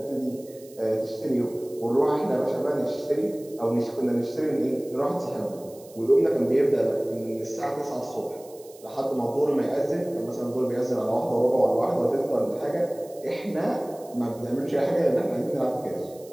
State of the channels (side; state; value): right; noise; hiss, 23 dB below the sound